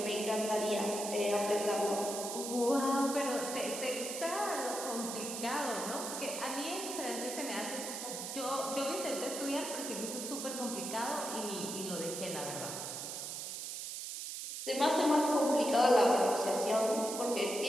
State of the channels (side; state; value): right; noise; hiss, 6 dB below the sound